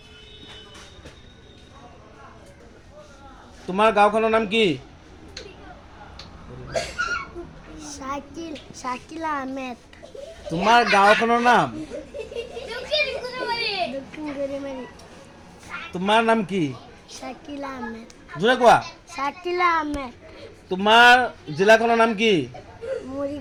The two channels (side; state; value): both; identical; correlation 1.00